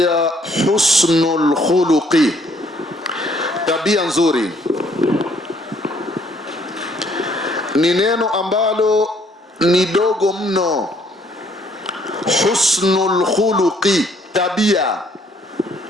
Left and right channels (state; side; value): normal; both; correlation 0.65